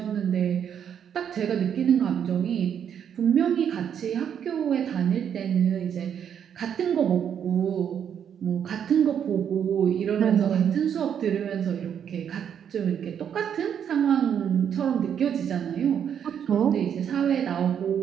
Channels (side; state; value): left; quieter; 8.5 dB